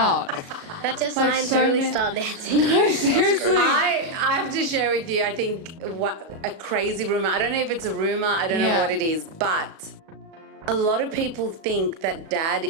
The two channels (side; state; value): left; late; 37 ms